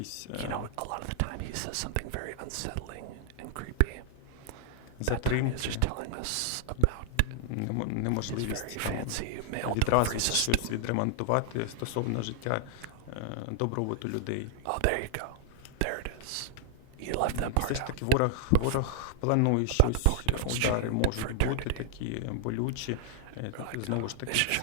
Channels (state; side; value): different; both; correlation 0.00